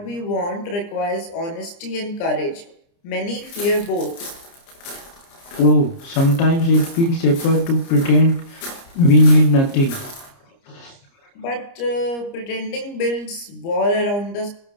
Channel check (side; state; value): right; late; 29 ms